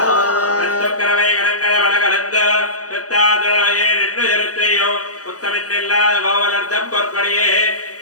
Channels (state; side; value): late; right; 0.67 ms